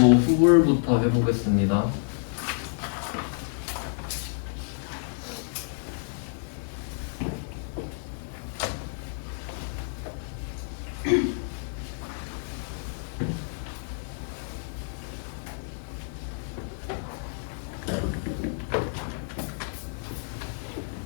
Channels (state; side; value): silent; right; digital silence